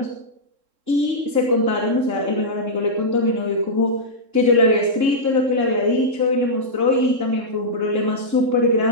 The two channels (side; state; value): left; late; 3.7 ms